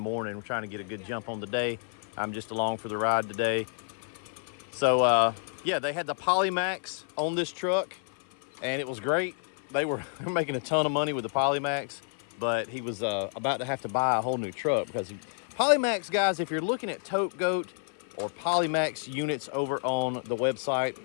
We're trying to get a good jump on the day. I'm just along for the ride today. So yeah, they had the Polymax on this truck and it was great. They were making a ton of money with the Polymax, but he was about to have to buy a whole new truck because Polymax, guys, if you're looking at Tote Goat or Polymax units over on the website,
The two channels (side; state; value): right; silent; 58 dB below the other